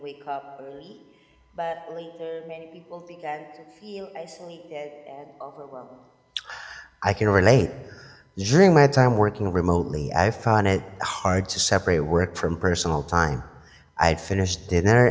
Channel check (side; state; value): both; identical; correlation 1.00